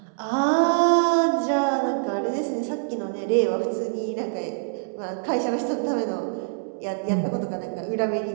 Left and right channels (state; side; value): silent; left; 62 dB below the other